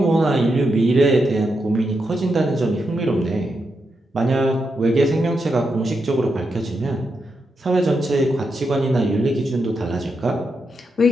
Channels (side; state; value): both; normal; correlation 0.84